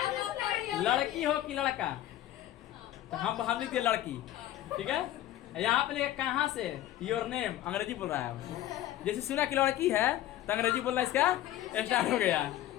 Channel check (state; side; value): quieter; right; 13.5 dB